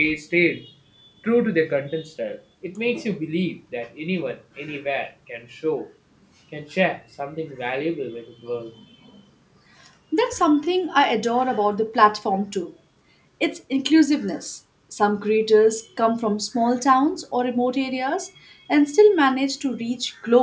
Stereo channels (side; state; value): both; identical; correlation 1.00